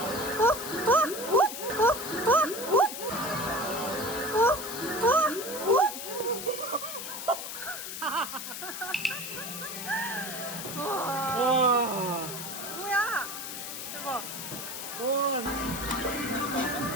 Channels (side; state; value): left; noise; hiss, 7 dB below the sound